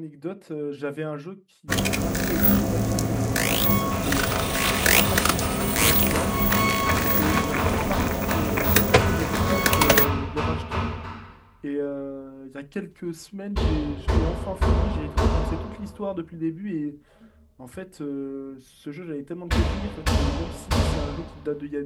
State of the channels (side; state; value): both; identical; correlation 1.00